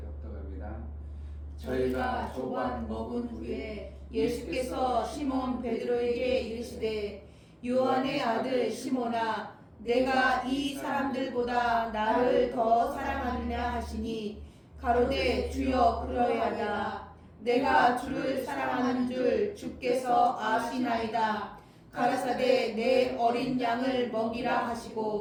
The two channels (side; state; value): both; identical; correlation 1.00